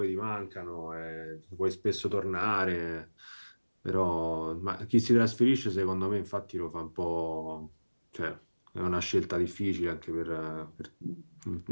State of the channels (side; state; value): both; inverted; correlation -1.00